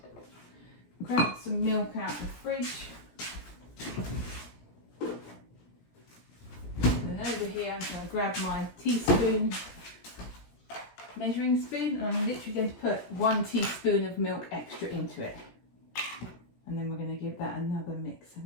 grab some milk out of the fridge. And over here I'm going to grab my teaspoon measuring spoon, and I'm literally going to put 1 teaspoon of milk extra into it. And then we're going to give that another mix. So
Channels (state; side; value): late; right; 17 ms